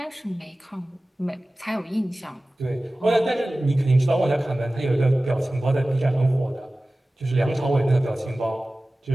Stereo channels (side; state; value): both; normal; correlation 0.97